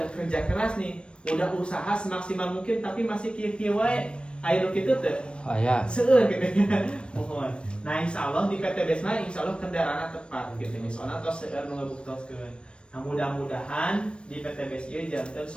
kerja keras nih, udah usaha semaksimal mungkin, tapi masih kieu-kieu wae. Ayo gitu tuh. Ya. Seueur gitu ya. Mohon. Nah, insya Allah di PTBS mah insya Allah kendaraan tepat gitu nih. Soalnya tos seueur nu ngabuktoskeun. Nah, mudah-mudahan di PTBS ieu janten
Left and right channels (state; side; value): late; right; 0.057 ms